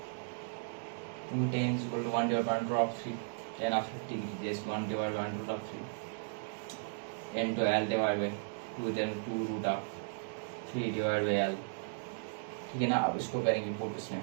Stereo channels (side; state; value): left; silent; digital silence